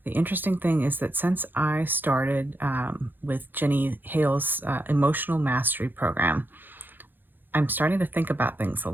the interesting thing is that since I started with Jenny Hale's Emotional Mastery Program, I'm starting to think about things a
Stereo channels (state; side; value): late; left; 0.092 ms